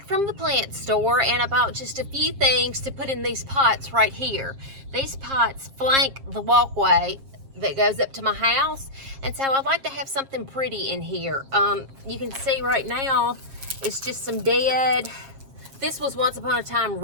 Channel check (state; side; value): late; left; 7.4 ms